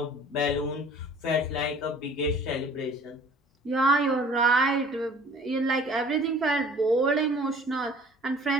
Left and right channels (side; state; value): both; normal; correlation 0.49